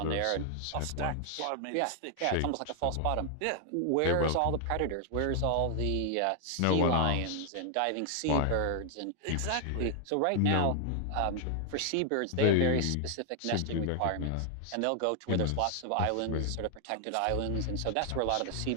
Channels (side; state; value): both; different; correlation 0.00